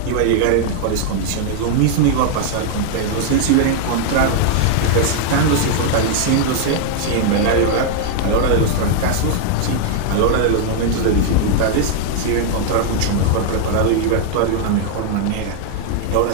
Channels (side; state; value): both; different; correlation 0.00